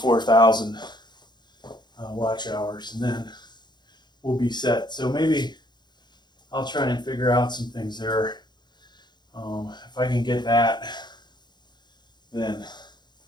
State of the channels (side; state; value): right; late; 0.21 ms